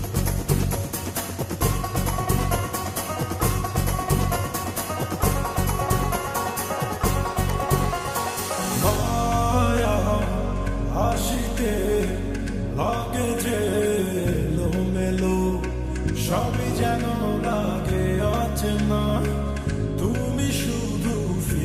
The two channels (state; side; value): identical; both; correlation 1.00